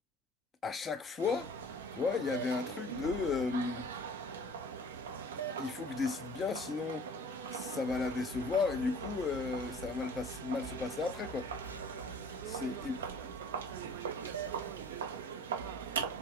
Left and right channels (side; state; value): both; normal; correlation 0.47